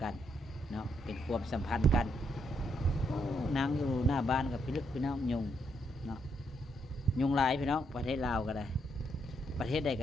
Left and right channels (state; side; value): normal; both; correlation 0.76